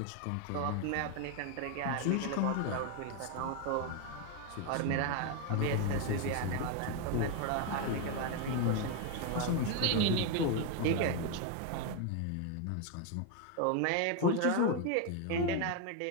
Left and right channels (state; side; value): different; both; correlation 0.01